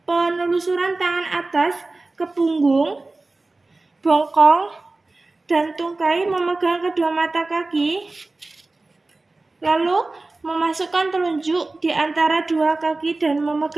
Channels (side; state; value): left; quieter; 3.3 dB